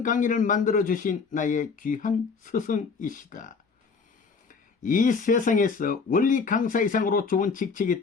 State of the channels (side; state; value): right; quieter; 5.1 dB